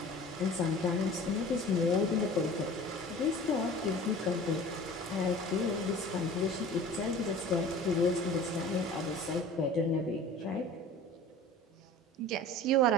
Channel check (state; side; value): normal; both; correlation 0.42